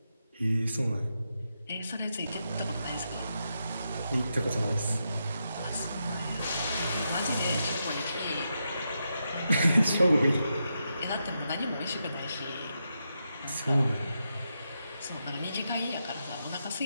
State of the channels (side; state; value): both; inverted; correlation -0.85